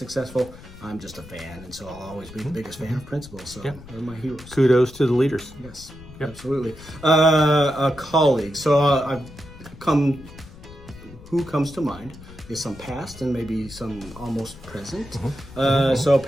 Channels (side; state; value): left; noise; rumble, 18 dB below the sound